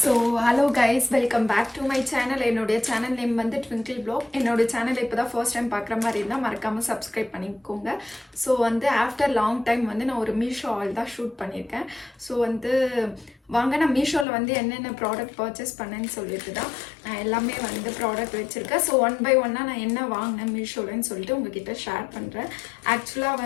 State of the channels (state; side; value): drops out; right; at 14.2 s